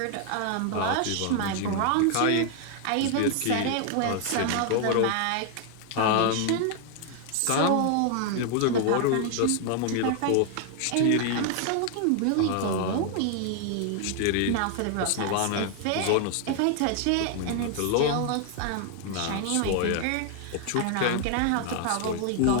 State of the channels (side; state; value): both; different; correlation 0.00